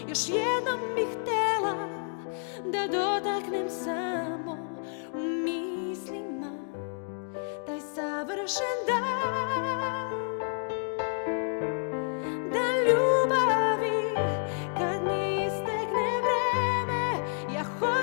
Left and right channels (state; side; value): silent; right; digital silence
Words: još jednom bih htjela da dotaknem samo u mislima taj savršen dan, dan ljubavi. Kad mi istekne vreme, ja